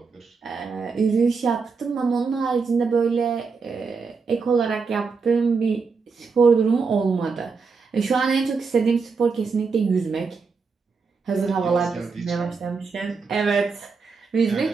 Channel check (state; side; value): quieter; left; 4.9 dB